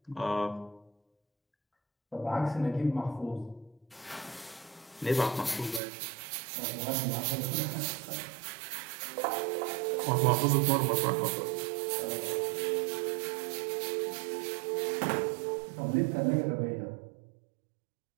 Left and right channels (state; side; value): drops out; left; at 5.8 s